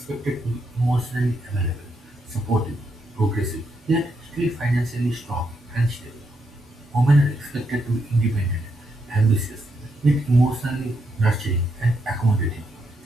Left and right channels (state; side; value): normal; both; correlation 0.79